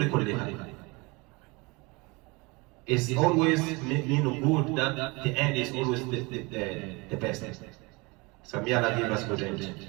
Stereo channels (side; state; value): left; quieter; 26.2 dB